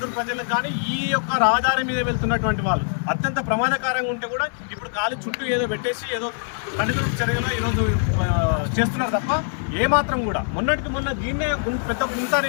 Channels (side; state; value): right; silent; 63 dB below the other